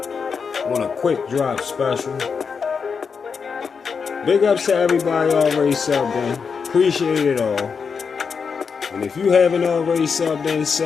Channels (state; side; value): quieter; right; 5.8 dB